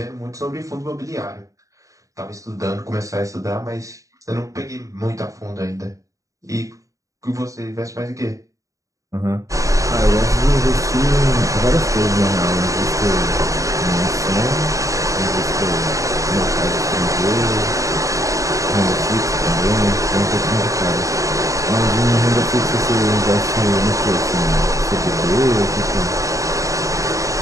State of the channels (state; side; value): late; left; 0.16 ms